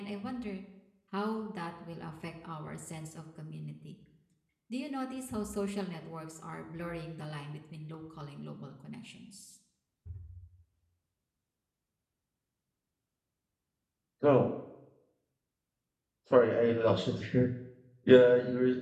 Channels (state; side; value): identical; both; correlation 1.00